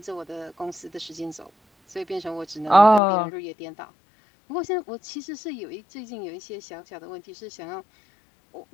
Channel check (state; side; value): drops out; right; at 3.0 s